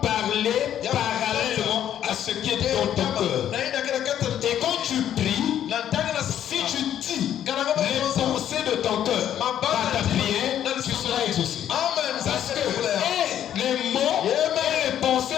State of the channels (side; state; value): right; quieter; 10.5 dB